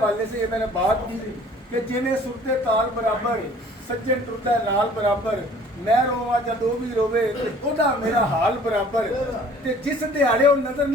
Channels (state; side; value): normal; both; correlation 0.52